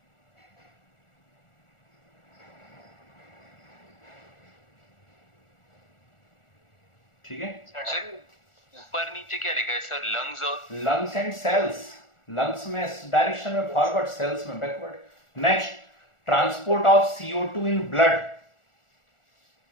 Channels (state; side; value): late; right; 1.4 ms